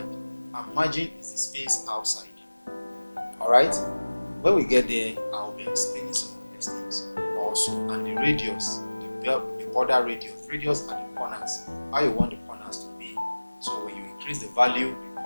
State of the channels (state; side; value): inverted; both; correlation -1.00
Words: and margin is the space outside. All right. When we get there, I'll be explaining some of these things also, and the radius, the border radius are the corners. How you want the corners to be. So when you increase the value, the